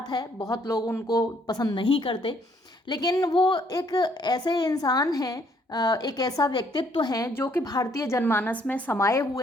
है, बहुत लोग उनको पसंद नहीं करते, लेकिन वो एक ऐसे इंसान हैं, एक ऐसा व्यक्तित्व हैं जो कि भारतीय जनमानस में समाये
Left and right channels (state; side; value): normal; both; correlation 0.66